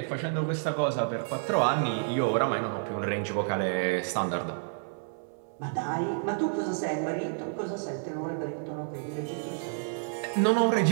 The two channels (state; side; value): silent; left; 58 dB below the other